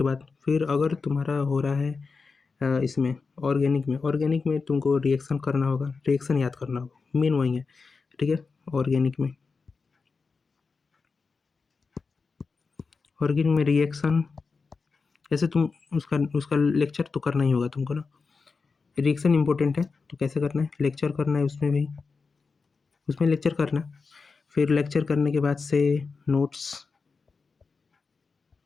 बाद फिर अगर तुम्हारा हो रहा है इसमें ऑर्गेनिक में तुमको रिएक्शन करना होगा, रिएक्शन याद करना होगा, मेन वही है। ठीक है, ऑर्गेनिक में रिएक्शन, जैसे तुम उसका उसका लेक्चर तो करना ही होगा तुमको ना। रिएक्शन इंपॉर्टेंट है, तो कैसे करना है, लेक्चर करना है उसमें भी, उसमें लेक्चर करना। फिर लेक्चर करने के बाद से नोट्स,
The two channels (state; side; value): quieter; right; 4.6 dB